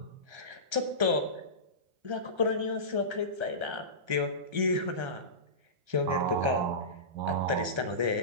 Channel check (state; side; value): late; left; 1.3 ms